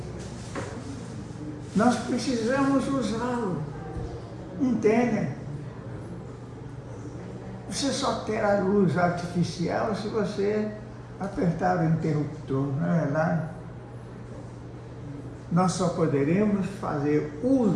nós precisamos usá-lo. Entendem? Você só terá luz artificial se você apertar o interruptor, não é verdade? Nós só poderemos fazer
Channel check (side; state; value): both; identical; correlation 1.00